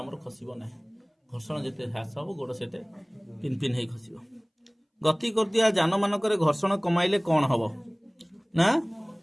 खसिबो नाही घर्षण जेते ह्रास हबो गोड़ सेते पिन पिन हे खसिबो गति करतिया जान मानकरे घर्षण कमाइले कोन हबो ना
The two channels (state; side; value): identical; both; correlation 1.00